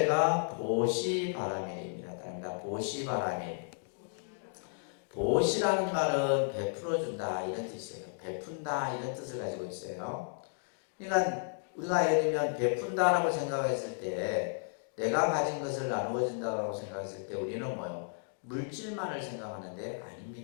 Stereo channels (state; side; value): silent; right; digital silence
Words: 보시바라밀입니다. 보시바라밀. 보시라는 말은 베풀어준다 이런 뜻이에요. 베푼다 이런 뜻을 가지고 있어요. 그러니까 우리가 예를 들면 베푼다라고 생각했을 때 내가 가진 것을 나누어 준다고 생각했을 때 우리는 뭐요? 물질만을 생각하는데